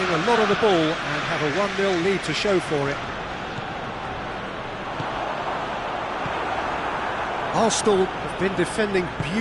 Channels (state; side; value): identical; both; correlation 1.00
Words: a lot of the ball and have a 1-0 lead to show for it. Arsenal have been defending